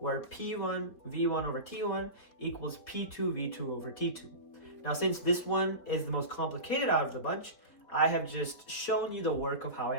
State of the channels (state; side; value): late; right; 4.2 ms